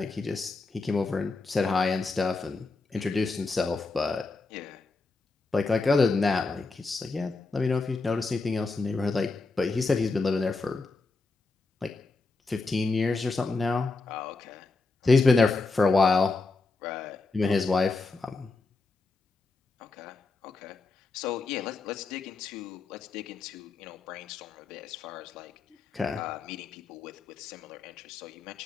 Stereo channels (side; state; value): right; quieter; 3.8 dB